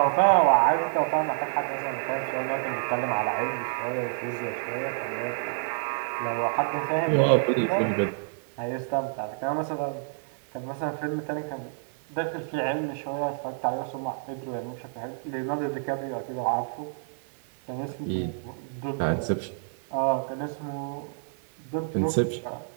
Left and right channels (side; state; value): left; silent; 59 dB below the other